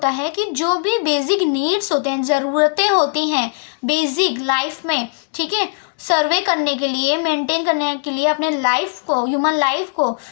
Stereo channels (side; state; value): right; silent; digital silence